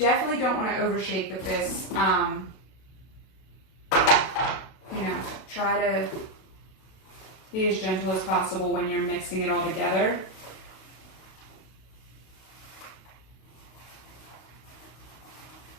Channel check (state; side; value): late; right; 32 ms